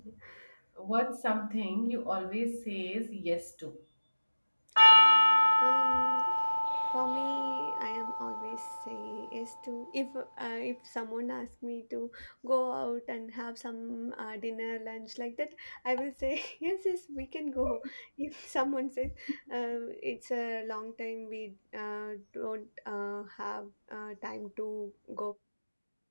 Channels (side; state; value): both; inverted; correlation -1.00